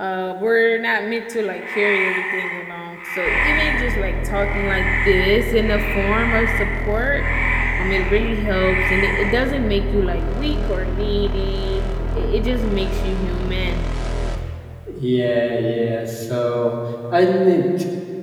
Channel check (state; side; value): identical; both; correlation 1.00